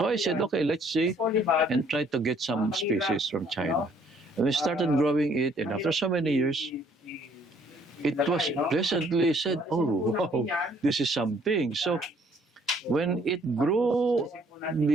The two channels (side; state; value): both; normal; correlation 0.62